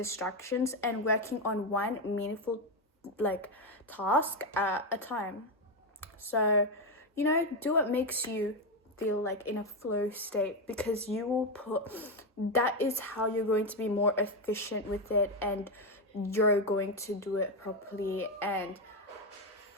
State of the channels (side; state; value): both; normal; correlation 0.08